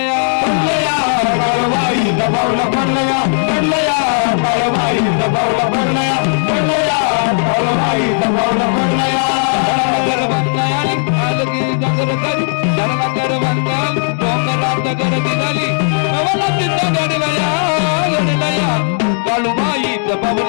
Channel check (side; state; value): right; silent; digital silence